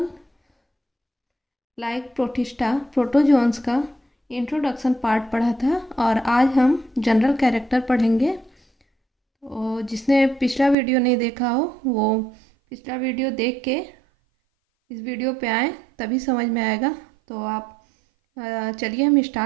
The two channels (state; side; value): drops out; left; at 10.8 s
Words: लाइक प्रोटिस्टा प्रोटोजोन्स का इंट्रोडक्शन पार्ट पढ़ा था और आज हम जनरल कैरेक्टर पढ़ेंगे। तो जिसने पिछला वीडियो नहीं देखा हो वो पिछला वीडियो देख के इस वीडियो पे आए, तभी समझ में आएगा। तो आप चलिए हम